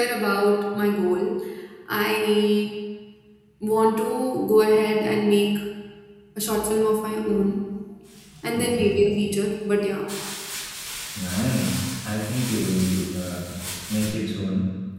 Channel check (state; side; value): identical; both; correlation 1.00